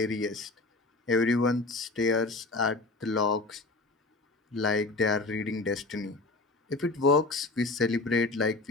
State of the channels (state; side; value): quieter; right; 3.3 dB